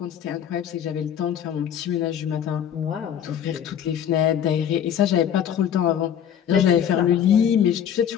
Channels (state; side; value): quieter; right; 9.2 dB